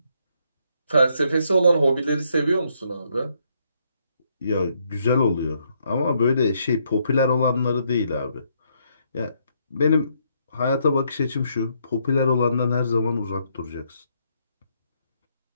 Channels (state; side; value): inverted; both; correlation -0.73